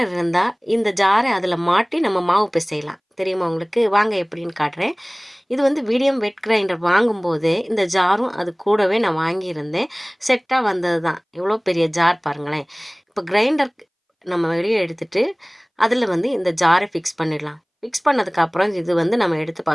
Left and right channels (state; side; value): identical; both; correlation 1.00